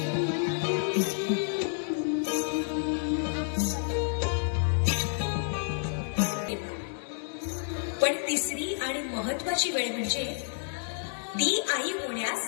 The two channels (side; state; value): right; silent; 58 dB below the other